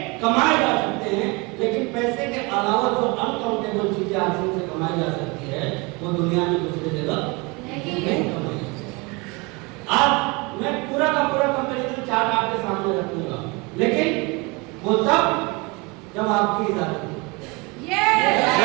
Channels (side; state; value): left; quieter; 27.3 dB